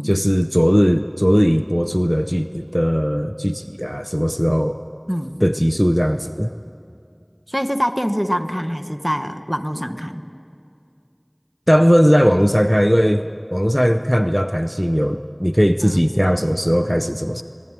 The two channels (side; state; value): both; identical; correlation 1.00